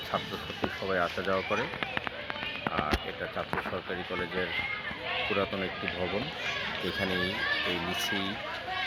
ছাত্রছাত্রী সবাই আসা যাওয়া করে। এটা চাঁদপুর সরকারি কলেজের পুরাতন একটি ভবন। এখানেই এই নিচেই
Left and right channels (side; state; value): both; identical; correlation 1.00